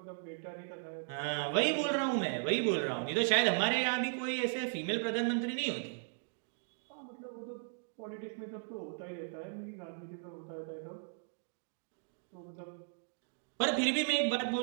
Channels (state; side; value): silent; left; digital silence